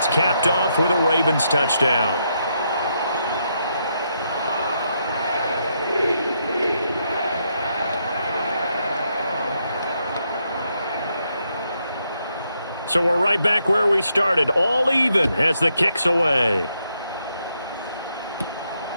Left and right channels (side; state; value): both; inverted; correlation -0.78